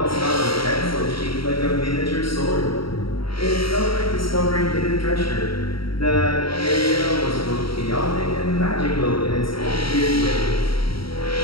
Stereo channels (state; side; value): late; right; 0.75 ms